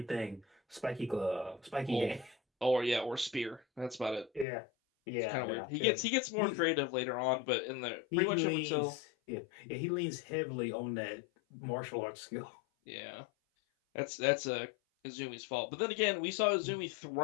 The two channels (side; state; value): right; drops out; at 4.5 s